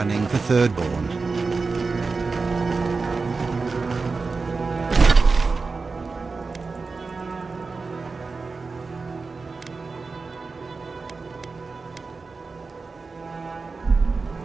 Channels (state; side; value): quieter; left; 4.3 dB